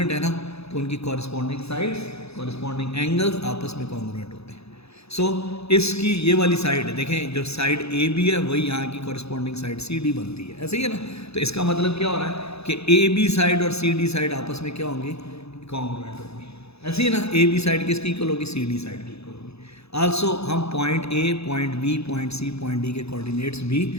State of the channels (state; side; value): late; right; 0.79 ms